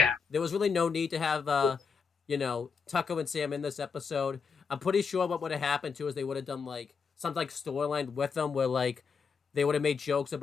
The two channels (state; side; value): quieter; right; 5.6 dB